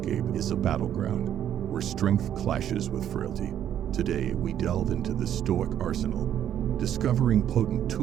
is a battleground where strength clashes with frailty. Today, we delve into the Stoic arsenal, discovering potent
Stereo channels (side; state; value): left; quieter; 10.3 dB